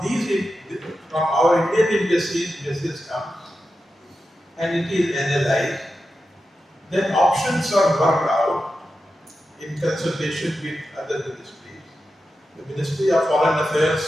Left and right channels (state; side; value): normal; both; correlation 0.90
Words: from our Indian embassies, message comes and it is analyzed. Then options are worked out in consultation with other ministries. The Ministry of Foreign